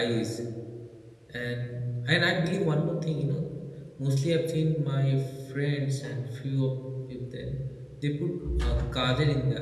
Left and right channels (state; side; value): identical; both; correlation 1.00